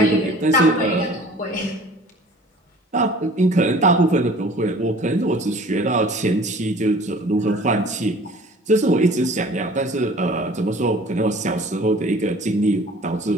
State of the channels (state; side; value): normal; both; correlation 0.48